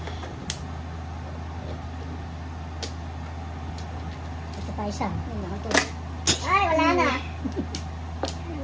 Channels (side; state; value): both; identical; correlation 1.00